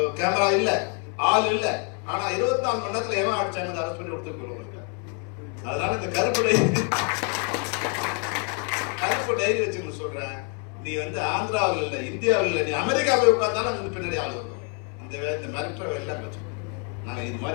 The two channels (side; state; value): right; quieter; 39.4 dB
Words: கேமரா இல்லை, ஆள் இல்லை, ஆனா 24 மணி நேரத்தில் எவன் அடிச்சாங்க அரெஸ்ட் பண்ணி கொடுத்துருக்கோம். அதனால இந்த கருப்பு டைரி வச்சுன்னு சொல்றேன், நீ வந்து ஆந்திராவில் இல்லை, இந்தியாவில் இல்லை, நீ அமெரிக்கா போய் உட்கார்ந்தாலும் அங்கே பின்னாடி ஆள் வரும். இந்த மிரட்டுற எல்லாம் வச்சு நாங்கள் இது